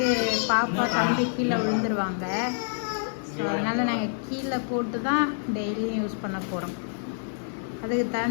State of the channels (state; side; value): silent; right; digital silence